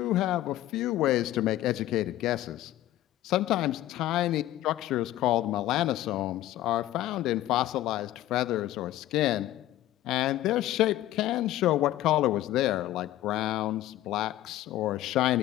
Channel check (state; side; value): quieter; right; 14.4 dB